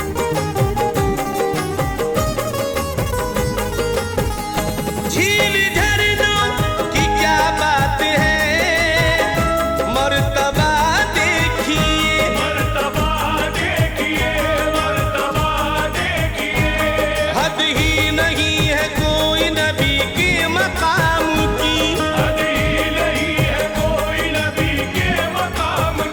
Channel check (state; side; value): identical; both; correlation 1.00